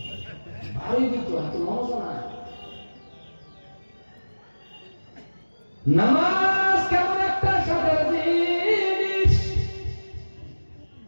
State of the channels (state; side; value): inverted; both; correlation -1.00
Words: ভালোই দিত তো নামাজ না নামাজ কেমন একটা সাধারণ জিনিস